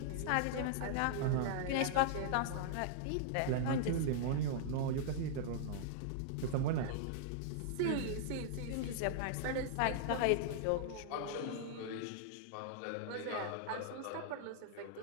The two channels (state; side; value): different; both; correlation -0.01